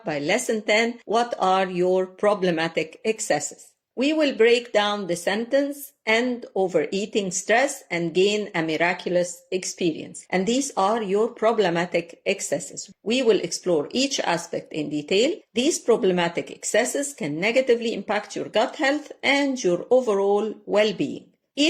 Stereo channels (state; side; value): identical; both; correlation 1.00